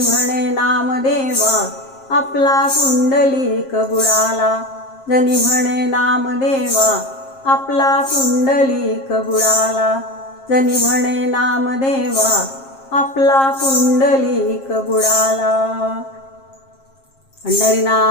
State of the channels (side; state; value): right; late; 7.5 ms